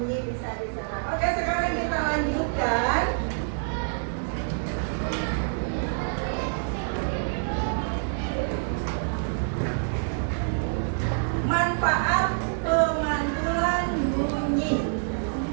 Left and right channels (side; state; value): left; silent; digital silence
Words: Oke, sekarang kita lanjutkan. Manfaat pemantulan bunyi.